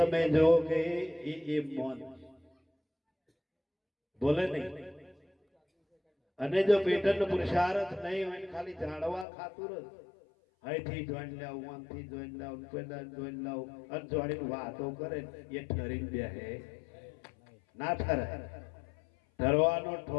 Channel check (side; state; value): right; drops out; at 9.2 s